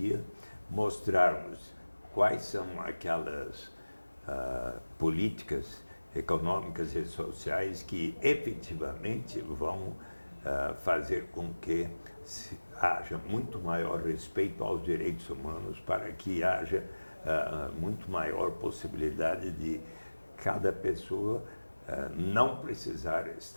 mostrarmos quais são aquelas políticas econômicas e sociais que efetivamente vão fazer com que haja muito maior respeito aos direitos humanos, para que haja muito maior possibilidade de cada pessoa não precisar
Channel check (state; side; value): inverted; both; correlation -1.00